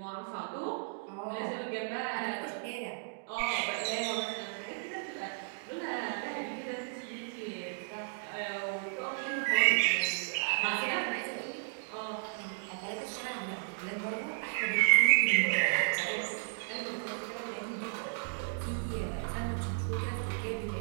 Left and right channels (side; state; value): left; silent; digital silence